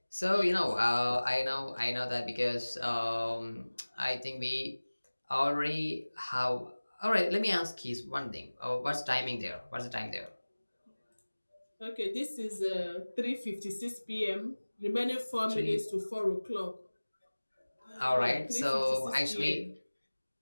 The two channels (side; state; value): both; inverted; correlation -1.00